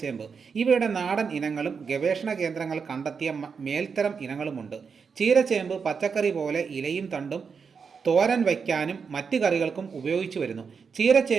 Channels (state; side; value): quieter; left; 5.8 dB